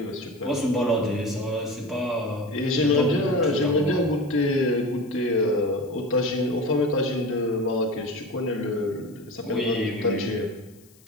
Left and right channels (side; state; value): left; noise; hiss, 28 dB below the sound